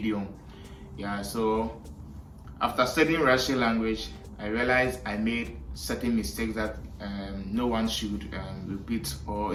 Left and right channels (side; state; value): both; identical; correlation 1.00